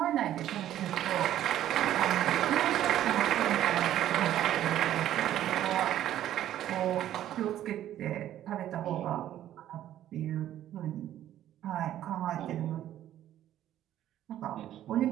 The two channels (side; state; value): left; quieter; 12.2 dB